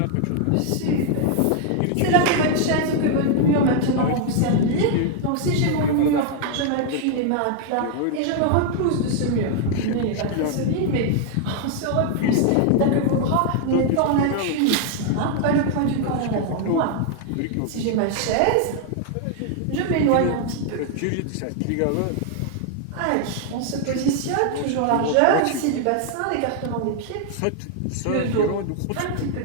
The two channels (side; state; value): both; different; correlation 0.00